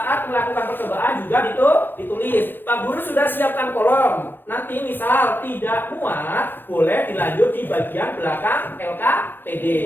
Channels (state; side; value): late; right; 0.098 ms